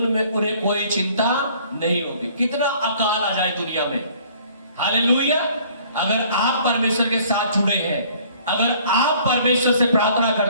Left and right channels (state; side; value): inverted; both; correlation -0.56